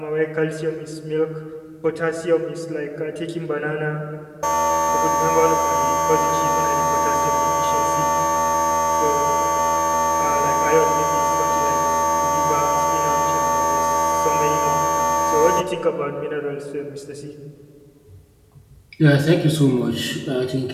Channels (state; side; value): identical; both; correlation 1.00